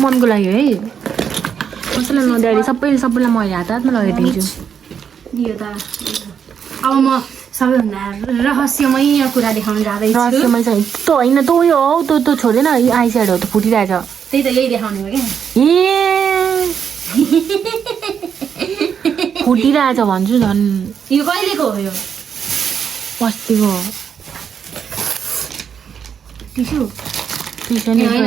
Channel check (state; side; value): quieter; left; 7.5 dB